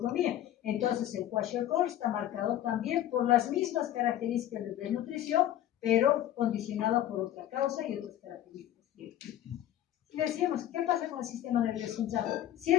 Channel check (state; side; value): quieter; right; 12.2 dB